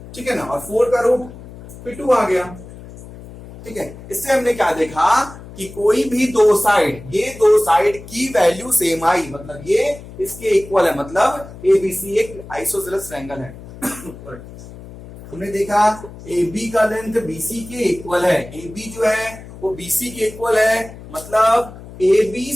ठीक है ना, और 4 का रूट फिर 2 आ गया। ठीक है, इससे हमने क्या देखा कि कोई भी दो साइड, ये दो साइड की वैल्यू सेम आई, मतलब ये इसके इक्वल है, मतलब ABC एक आइसोसेलेस ट्रायंगल है। हमने देखा AB का लेंथ BC के इक्वल है, AB जो है वो BC के इक्वल है, मतलब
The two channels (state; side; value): noise; left; hum, 16 dB below the sound